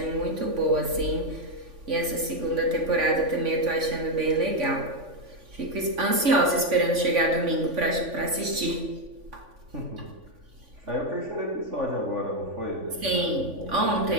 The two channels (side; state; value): left; late; 3.5 ms